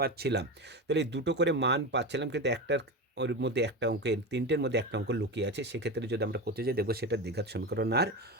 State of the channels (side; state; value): both; normal; correlation 0.22